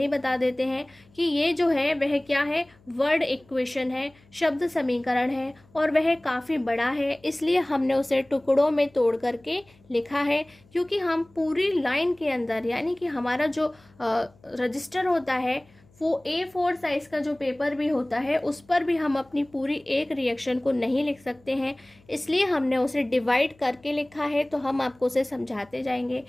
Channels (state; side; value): noise; left; hum, 30 dB below the sound